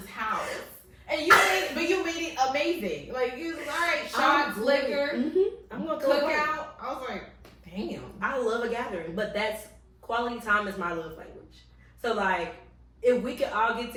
house. And you made it amazing. Like, you was like, all right, shots, liquor, I'm gonna cook out. I was like, damn. I love a gathering, but that's quality time is my love language. So like, if we could all get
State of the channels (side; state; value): both; identical; correlation 1.00